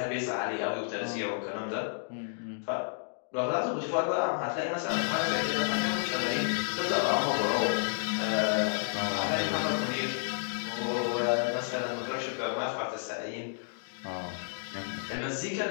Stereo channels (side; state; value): right; silent; digital silence